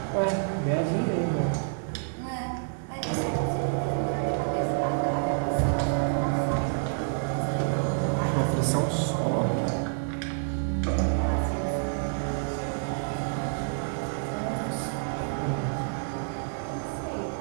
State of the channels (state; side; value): silent; left; digital silence